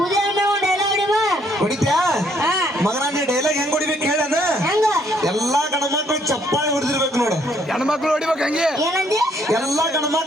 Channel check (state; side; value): normal; both; correlation 0.67